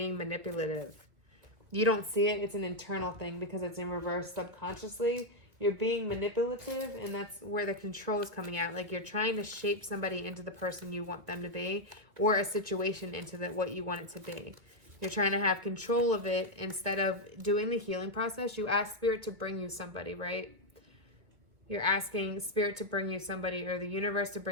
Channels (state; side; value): late; left; 2.0 ms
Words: manipulative. You don't see it. It's an internal thing because it's in reverse subconsciously. You're being manipulative, and that's where the control is coming out. Like you're trying to shape somebody into the person you want them to be, or a situation into what you want it to be. You're trying to have control of it instead of doing the healing process. You ask Spirit to bring you somebody, right? You're asking Spirit to bring you somebody, or the universe to